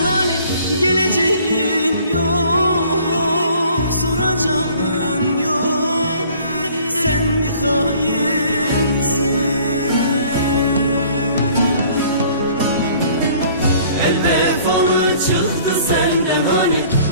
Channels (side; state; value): both; inverted; correlation -0.54